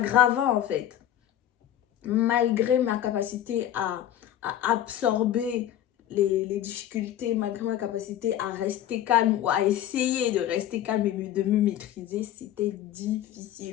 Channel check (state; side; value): quieter; right; 11.5 dB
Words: en fait. Malgré ma capacité à absorber les difficultés, malgré ma capacité à rester calme ou à essayer de rester calme et de me maîtriser, c'était